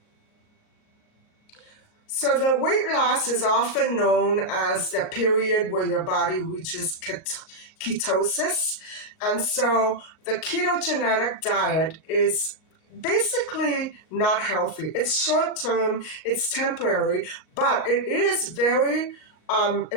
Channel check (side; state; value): right; late; 38 ms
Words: So the weight loss is often known as the period where your body reaches ketosis. And so the ketogenic diet is basically not healthy. It's short term, it's temporary, but it is very